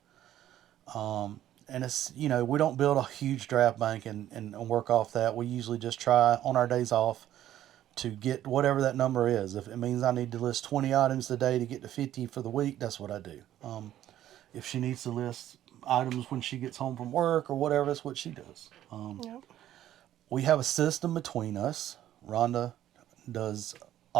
And it's, we don't build a huge draft bank and work off that. We usually just try on our days off to get whatever that number is. If it means I need to list 20 items a day to get to 50 for the week, that's what I do. If she needs to list items when she gets home from work or whatever, that's what she does. Yep. We have a system between us. Rhonda does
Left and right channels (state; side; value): quieter; left; 12.4 dB